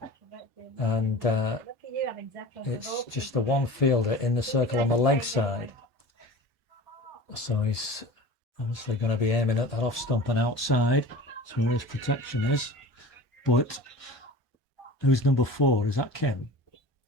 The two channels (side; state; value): both; normal; correlation 0.37